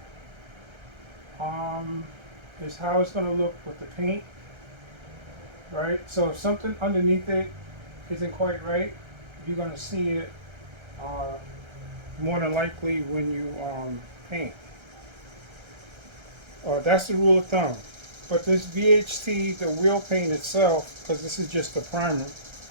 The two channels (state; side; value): late; left; 1.3 ms